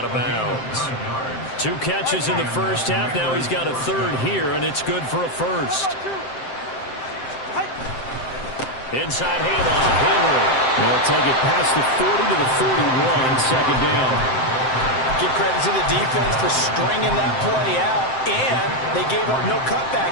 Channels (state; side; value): late; right; 7.7 ms